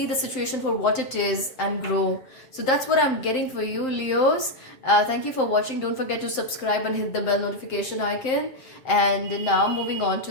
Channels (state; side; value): late; right; 7.7 ms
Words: the situation for what it is and grow. So that's what I'm getting for you, Leos. Thank you for watching. Don't forget to subscribe and hit the bell notification icon. And now moving on